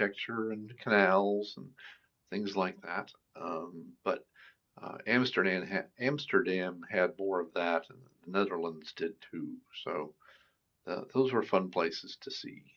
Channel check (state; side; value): identical; both; correlation 1.00